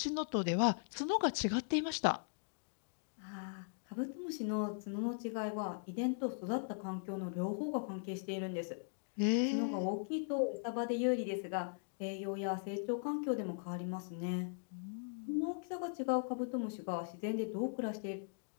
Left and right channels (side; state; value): right; silent; digital silence